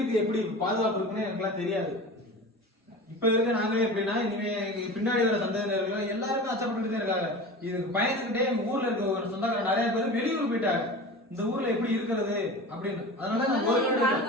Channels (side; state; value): both; normal; correlation 0.34